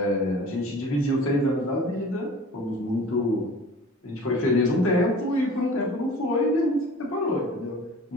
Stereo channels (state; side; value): normal; both; correlation 0.43